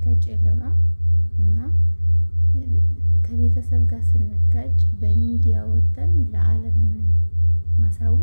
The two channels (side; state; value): both; inverted; correlation -1.00